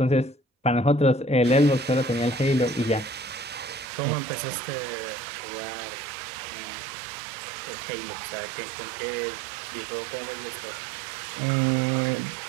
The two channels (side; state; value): left; drops out; at 3.9 s